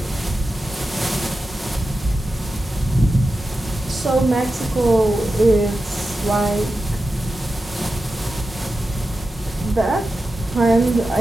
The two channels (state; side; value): normal; both; correlation 0.92